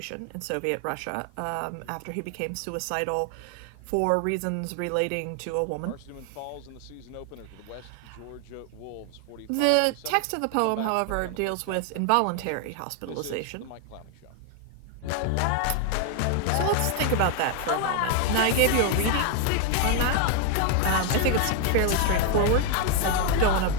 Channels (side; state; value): both; different; correlation 0.01